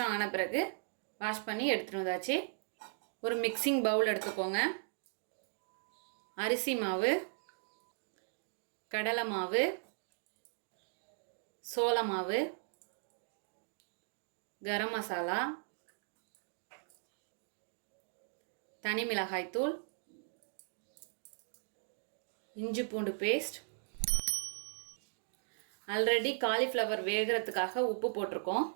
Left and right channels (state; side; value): silent; left; digital silence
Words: ஆன பிறகு வாஷ் பண்ணி எடுத்துகிட்டு வந்தாச்சு. ஒரு மிக்சிங் பவுல் எடுத்துக்கோங்க. அரிசி மாவு, கடலை மாவு, சோள மாவு, கரம் மசாலா, தனி மிளகாய்த்தூள், இஞ்சி பூண்டு பேஸ்ட். ஆல்ரெடி காலிஃப்ளவர் வேகிறதுக்காக உப்பு போட்டிருக்கோம்